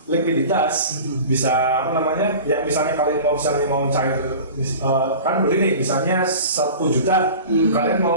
likuiditas, bisa apa namanya? Ya misalnya kalian mau cair kan beli nih misalnya 1 juta, kalian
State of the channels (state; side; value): inverted; both; correlation -0.37